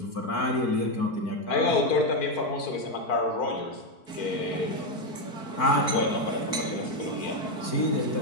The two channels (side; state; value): right; late; 4.5 ms